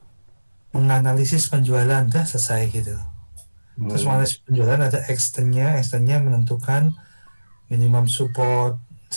menganalisis penjualan, dah selesai gitu. Terus menganalisis penjualan ada extendnya menentukan minimum support.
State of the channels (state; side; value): inverted; both; correlation -1.00